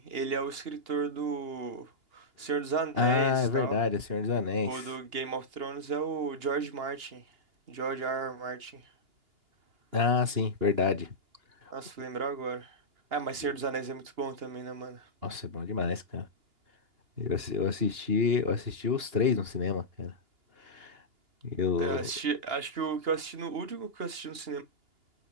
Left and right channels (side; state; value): left; late; 2.8 ms